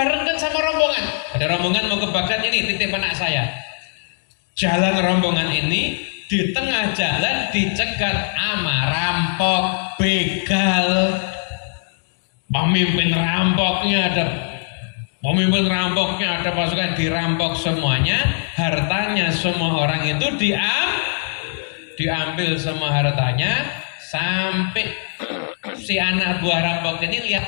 sama rombongan. Ada rombongan mau ke Baghdad, ini titip anak saya. Jalan rombongan ini, di tengah jalan dicegat ama rampok, begal. Pemimpin rampoknya ada pasukan, dirampok semuanya, hartanya semua orang itu diambil semua hartanya, sampai si anak buah rampok ini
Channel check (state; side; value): silent; right; 65 dB below the other